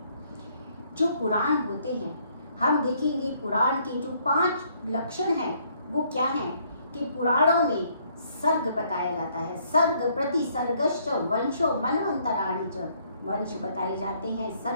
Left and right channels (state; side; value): inverted; both; correlation -0.67